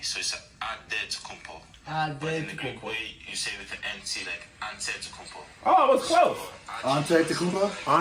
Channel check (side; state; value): both; identical; correlation 1.00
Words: so it's Antetokounmpo. But in the Greek way, you say with an NT, like Antetokounmpo. Oh, it was close. Antetokounmpo?